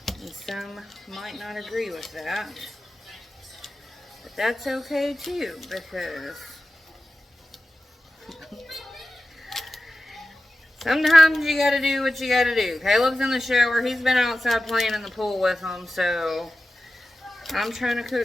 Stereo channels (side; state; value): both; normal; correlation 0.94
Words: And some might not agree with that. But that's okay too, because sometimes you gotta do what you gotta do. Caleb's in the shower. He's been outside playing in the pool with them, so I'm trying to